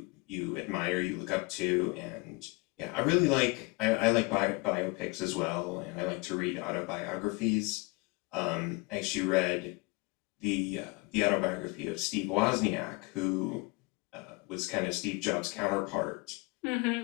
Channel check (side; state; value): right; quieter; 27.7 dB